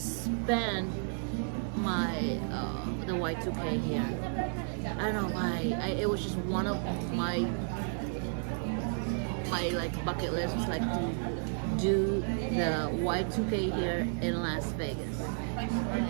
my the Y2K here. I don't know why. It was just one of my like bucket list was like to do the Y2K here in Las Vegas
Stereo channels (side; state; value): left; silent; 56 dB below the other